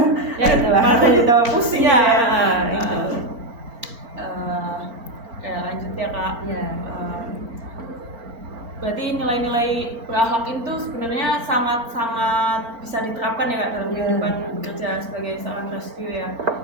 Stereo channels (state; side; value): late; left; 4.4 ms